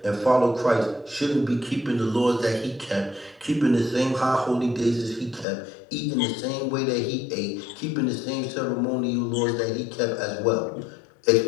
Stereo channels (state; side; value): drops out; right; at 5.5 s